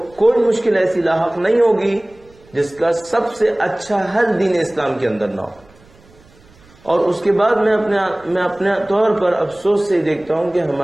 کوئی مشکل ایسی لاحق نہیں ہوگی جس کا سب سے اچھا حل دین اسلام کے اندر نہ ہو. اور اس کے بعد میں اپنے طور پر افسوس سے دیکھتا ہوں کہ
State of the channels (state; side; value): noise; right; rumble, 28 dB below the sound